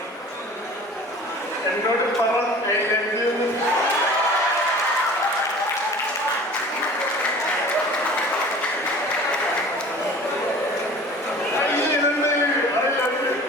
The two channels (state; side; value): normal; both; correlation 0.44